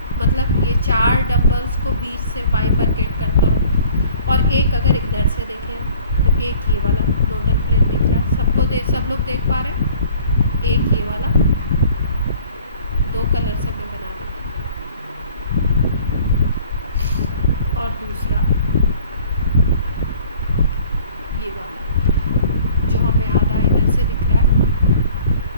मतलब ये चार डंबल्स को बीच से बाइफरकेट करता हो, और एक अगर इधर से देखें तो एक ये वाला नोडल प्लेन दिख रहा है। सब लोग देख पा रहे हैं? एक ये वाला, दो कलर से मैं बना देती हूँ, और दूसरा ये वाला जो हमें आधा इधर से दिख रहा है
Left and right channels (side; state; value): both; inverted; correlation -0.52